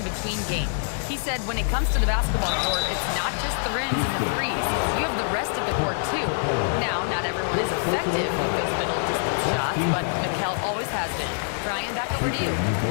game. He said when it comes to the basketball court, it's not just the rims and the threes. You have the rest of the court too. Now, not everyone is effective with those middle distance shots, but Mikal always has been. Brian, back over to you.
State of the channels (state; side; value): silent; right; 62 dB below the other